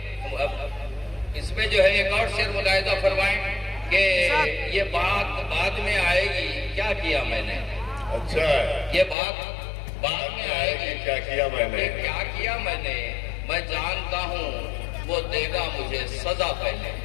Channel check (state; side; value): drops out; right; at 9.2 s